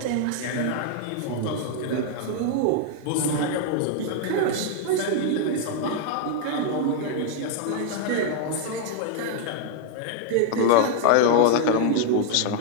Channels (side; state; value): both; different; correlation 0.00